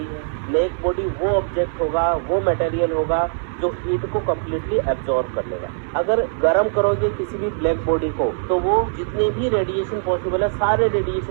है। ब्लैक बॉडी वो ऑब्जेक्ट होगा, वो मटेरियल होगा जो हीट को कम्प्लीटली एब्जॉर्ब कर लेगा। अगर गर्म करोगे किसी भी ब्लैक बॉडी को तो वो जितने भी रेडिएशन पॉसिबल है सारे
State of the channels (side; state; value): left; silent; 65 dB below the other